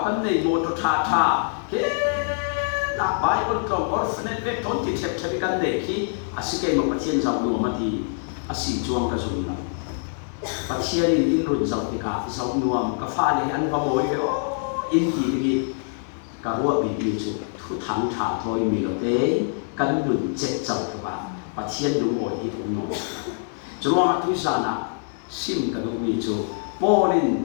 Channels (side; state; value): right; silent; digital silence